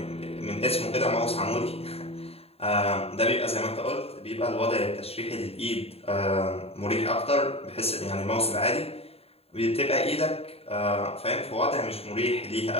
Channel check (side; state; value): right; late; 0.29 ms